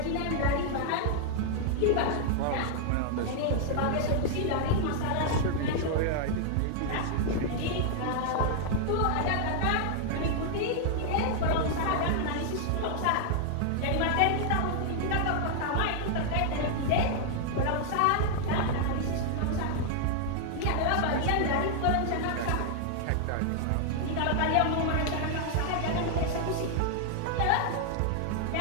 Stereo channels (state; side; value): different; both; correlation 0.00